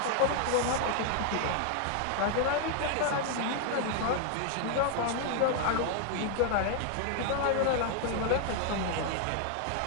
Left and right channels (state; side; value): different; both; correlation 0.00